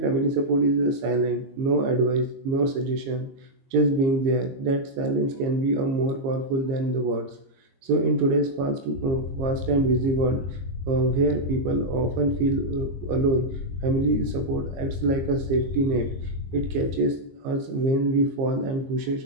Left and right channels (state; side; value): late; left; 22 ms